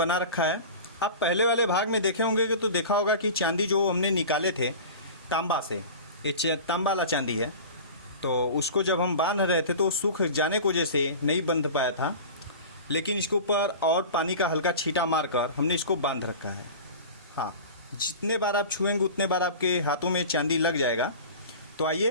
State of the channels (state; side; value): inverted; both; correlation -0.35